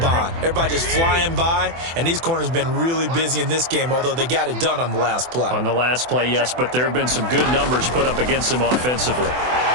Everybody just flying by, and these corners have been really busy in this game, although they got it done on the last play. On the last play, yes, but there have been some good numbers put up against them offensively.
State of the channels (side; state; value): left; late; 24 ms